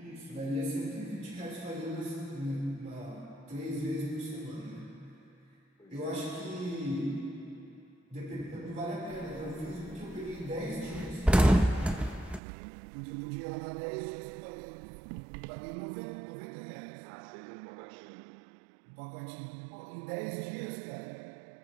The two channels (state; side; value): drops out; left; at 12.4 s